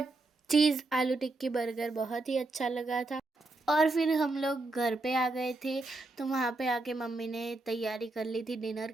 चीज़ आलू टिक्की बर्गर बहुत ही अच्छा लगा था। और फिर हम लोग घर पे आ गए थे। तो वहाँ पे आके मम्मी ने तैयारी कर ली थी डिनर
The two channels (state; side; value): quieter; left; 3.0 dB